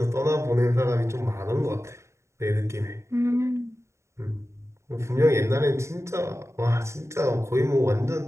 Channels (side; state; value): left; late; 0.14 ms